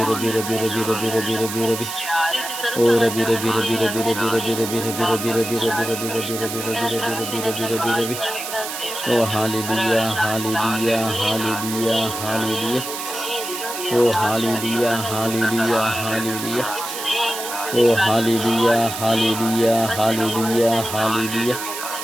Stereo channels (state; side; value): noise; right; hiss, 7 dB below the sound